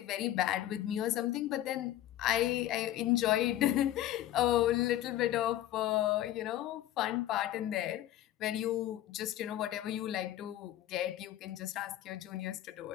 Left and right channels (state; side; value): quieter; right; 13.4 dB